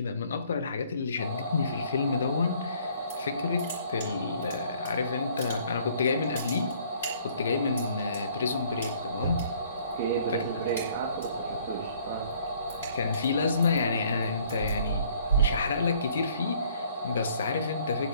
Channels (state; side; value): inverted; both; correlation -0.60